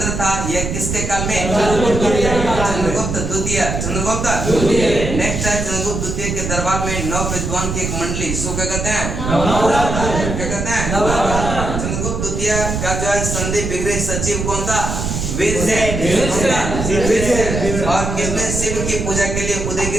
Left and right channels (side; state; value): right; noise; rumble, 3 dB below the sound